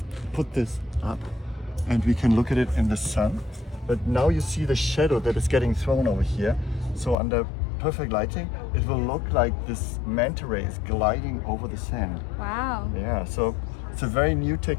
put this up and we can look at it in the sun. But now you see the shadow that is getting thrown over here. So under perfect lighting, it will look like this manta ray is gliding over the sand. Wow. Yeah, so it's a very new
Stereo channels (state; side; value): drops out; right; at 7.2 s